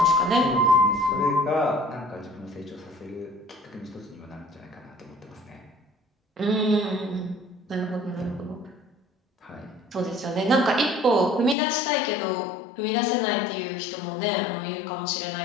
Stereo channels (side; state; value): right; drops out; at 11.6 s